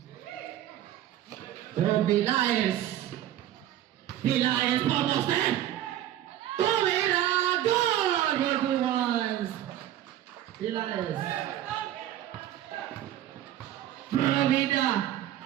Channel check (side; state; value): left; quieter; 12.4 dB